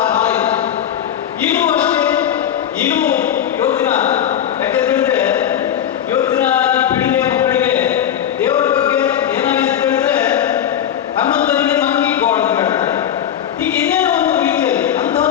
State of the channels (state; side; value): quieter; right; 10.0 dB